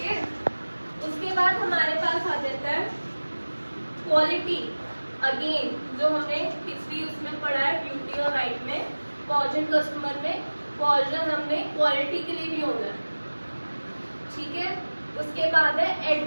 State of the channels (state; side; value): inverted; both; correlation -1.00